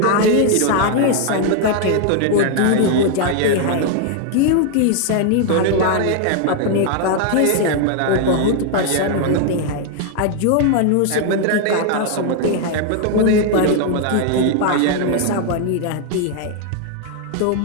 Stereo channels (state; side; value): different; both; correlation 0.00